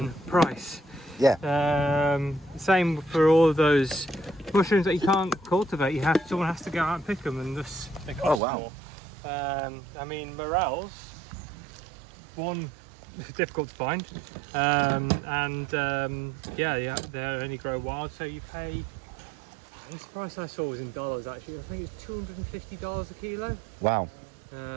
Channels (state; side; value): drops out; left; at 8.4 s